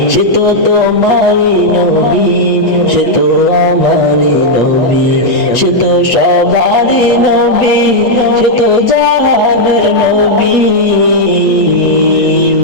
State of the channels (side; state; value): right; late; 8.2 ms